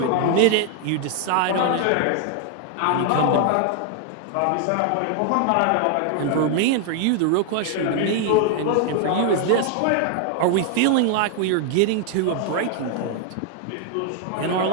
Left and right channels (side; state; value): both; different; correlation 0.00